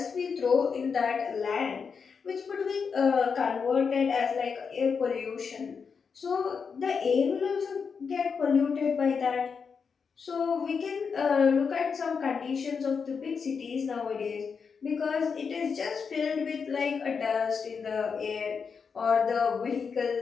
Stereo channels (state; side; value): quieter; right; 5.8 dB